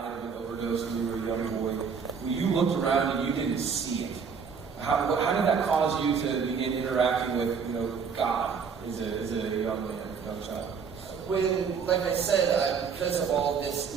of an overdose when you were a young boy. When you looked around and you didn't see it, how did that cause you to begin interacting with God as a young man, young child? When, like I said, because of all this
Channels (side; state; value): left; quieter; 6.1 dB